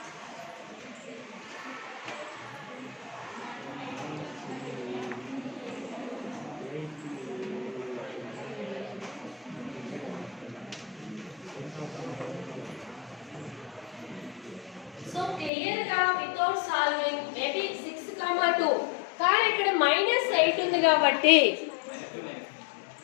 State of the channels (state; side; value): drops out; right; at 15.5 s